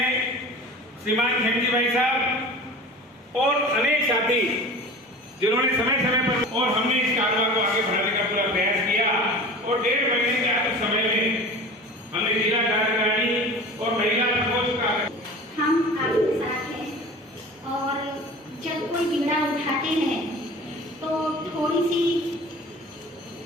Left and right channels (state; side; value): normal; both; correlation 0.38